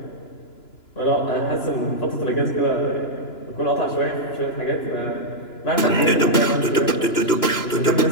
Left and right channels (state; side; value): late; right; 2.9 ms